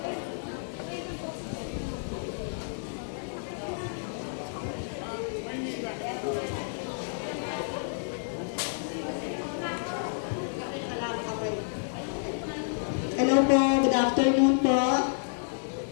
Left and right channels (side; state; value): right; silent; digital silence